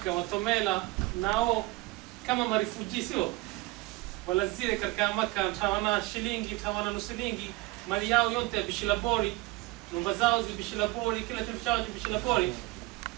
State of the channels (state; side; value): quieter; left; 21.4 dB